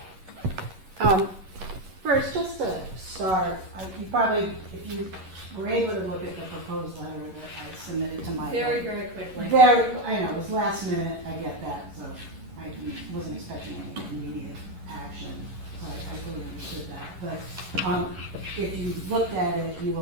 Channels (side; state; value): left; late; 11 ms